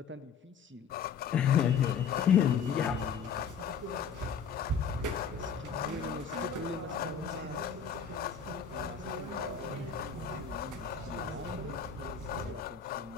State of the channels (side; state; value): right; quieter; 6.6 dB